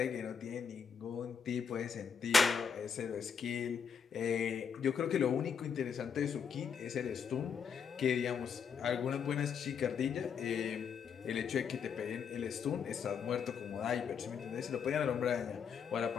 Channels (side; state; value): right; quieter; 6.7 dB